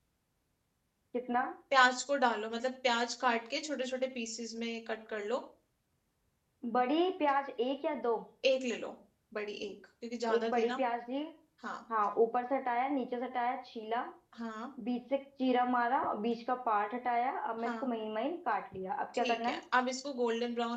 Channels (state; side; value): identical; both; correlation 1.00